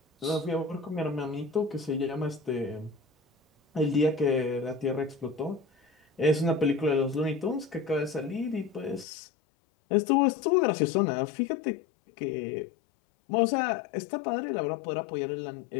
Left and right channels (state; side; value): drops out; right; at 9.1 s